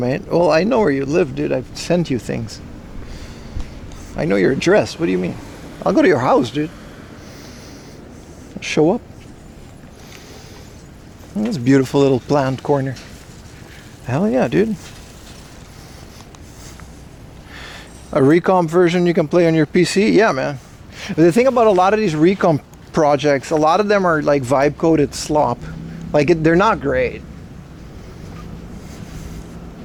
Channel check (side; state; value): both; identical; correlation 1.00